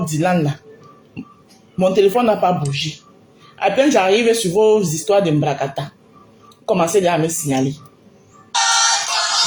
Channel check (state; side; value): identical; both; correlation 1.00